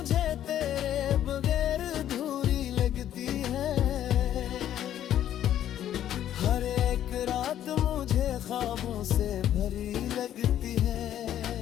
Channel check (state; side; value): quieter; right; 11.2 dB